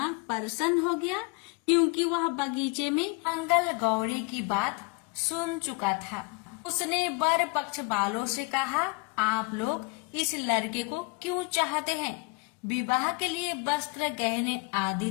प्रसन्न हो गया, क्योंकि वह बगीचे में मंगल गौरी की बात सुन चुका था। उसने वर पक्ष वालों से कहा, आप लोग इस लड़के को क्यों चाहते हैं? विवाह के लिए वस्त्र, गहने आदि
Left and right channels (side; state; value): right; quieter; 28.5 dB